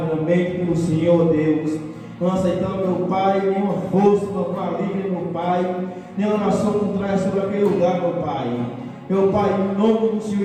pelo Senhor, ó Deus. Não aceitamos, meu Pai, nenhuma força, meu maligna, meu Pai, nenhuma nação contrária sobre aquele lugar, meu Pai. Meu Pai, em nome do Senhor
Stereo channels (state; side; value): identical; both; correlation 1.00